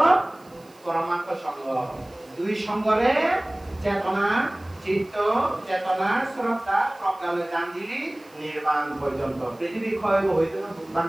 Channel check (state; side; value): noise; right; hiss, 29 dB below the sound